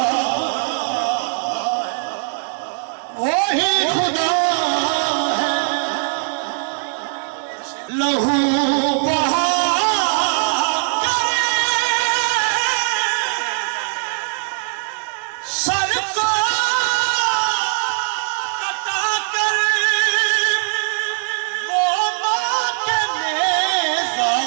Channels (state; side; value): silent; left; 66 dB below the other